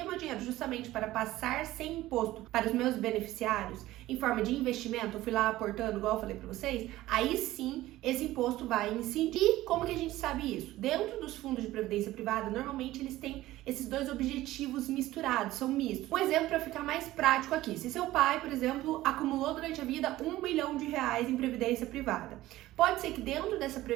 meu dinheiro justamente para passar sem imposto para os meus beneficiários, em forma de investimento, eu fui lá aportando, igual eu falei para vocês, aí sim esse imposto vai incidir. E como que a gente sabe isso? Dentro dos fundos de previdência privada, normalmente eles têm esses dois objetivos misturados, são mistos. Um exemplo para ficar mais prático aqui, se seu pai, por exemplo, acumulou durante a vida R$1 bilhão em previdência privada, pode ser que dentro dessa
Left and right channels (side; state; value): left; quieter; 16.1 dB